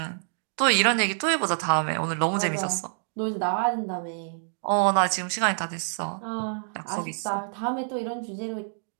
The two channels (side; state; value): left; silent; digital silence